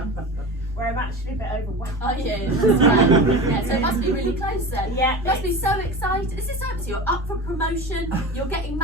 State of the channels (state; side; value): normal; both; correlation 0.30